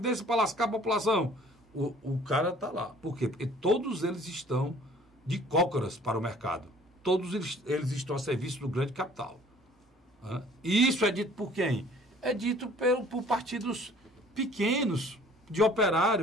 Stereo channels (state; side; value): normal; both; correlation 0.53